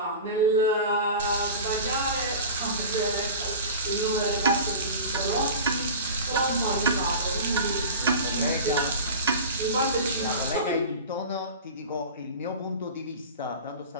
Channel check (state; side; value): inverted; both; correlation -0.33